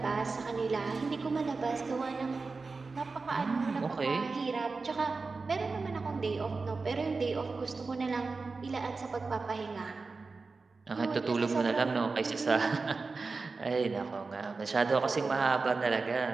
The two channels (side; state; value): left; quieter; 4.1 dB